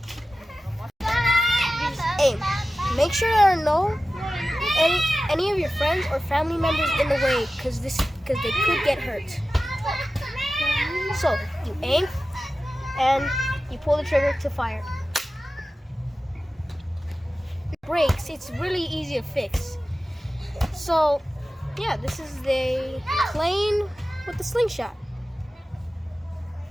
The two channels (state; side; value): normal; both; correlation 0.95